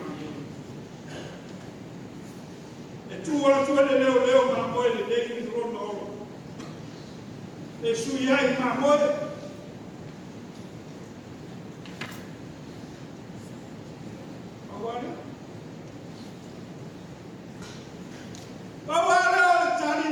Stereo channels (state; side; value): identical; both; correlation 1.00